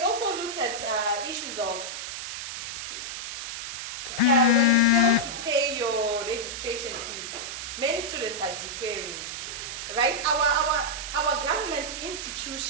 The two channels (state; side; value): noise; right; hiss, 6 dB below the sound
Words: also look at issues of when you fail to pay your registration fees, many students are deferring, right? Our government